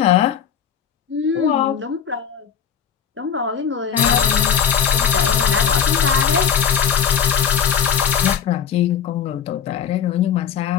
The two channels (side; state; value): right; quieter; 7.9 dB